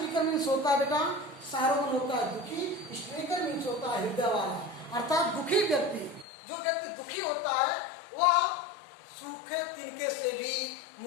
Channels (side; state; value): right; drops out; at 6.2 s